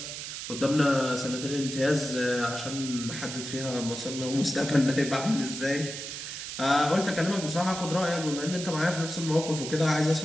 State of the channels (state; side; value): noise; right; hiss, 7 dB below the sound